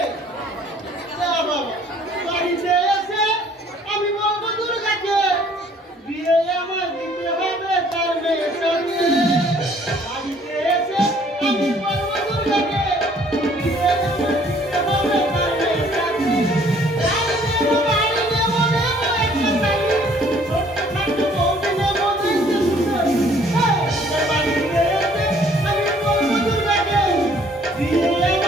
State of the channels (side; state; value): both; normal; correlation 0.59